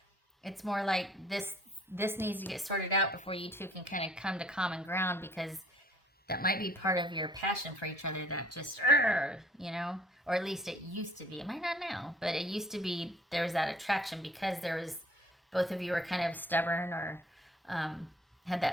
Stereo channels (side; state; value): both; normal; correlation 0.57